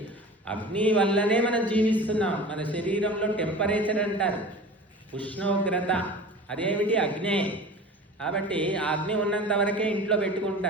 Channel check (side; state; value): both; normal; correlation 0.37